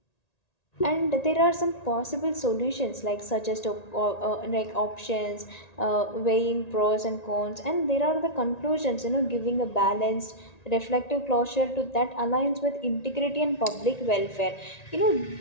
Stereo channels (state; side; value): late; right; 1.9 ms